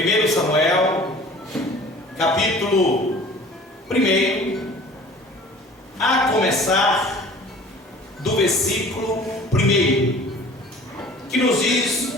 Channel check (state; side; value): normal; both; correlation 0.46